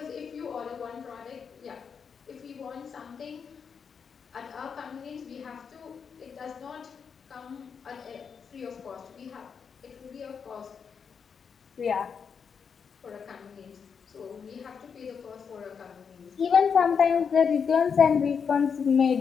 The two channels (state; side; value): quieter; right; 6.4 dB